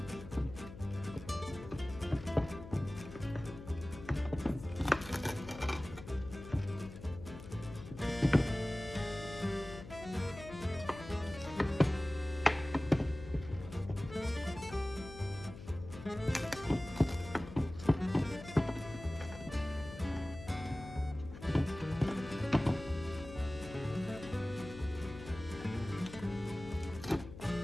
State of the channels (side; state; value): left; noise; hum, 14 dB below the sound